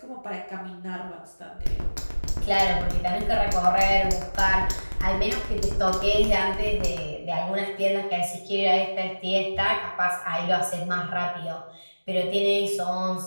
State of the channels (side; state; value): both; inverted; correlation -1.00